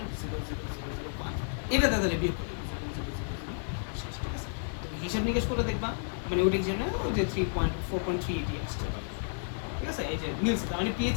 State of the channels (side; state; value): right; silent; digital silence